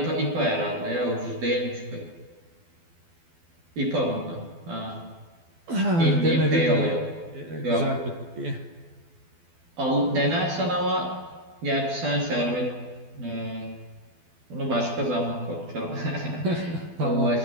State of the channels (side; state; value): left; late; 12 ms